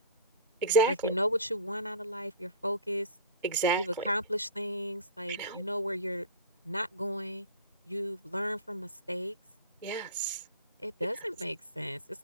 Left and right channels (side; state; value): both; inverted; correlation -0.35